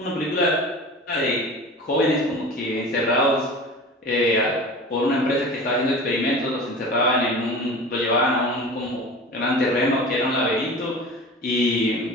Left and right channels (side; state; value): both; normal; correlation 0.36